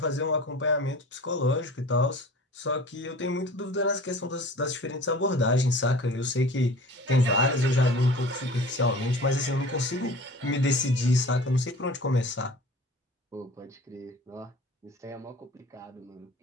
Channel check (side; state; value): both; normal; correlation 0.42